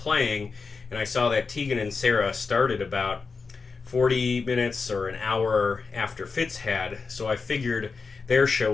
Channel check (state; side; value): quieter; right; 4.7 dB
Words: and I saw that Tegan and Sara started about 40 minutes or an hour after Fitz had, so I figured their show